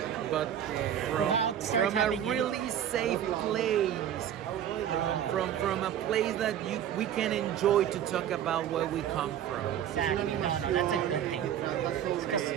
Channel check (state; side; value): quieter; left; 10.1 dB